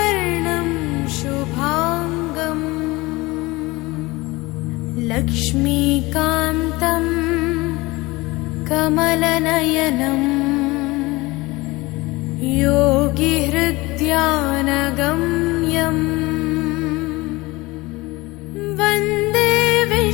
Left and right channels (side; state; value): right; quieter; 21.8 dB